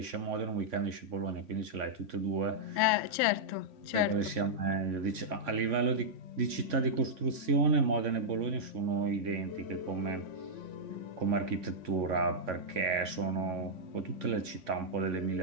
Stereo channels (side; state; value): left; late; 3.5 ms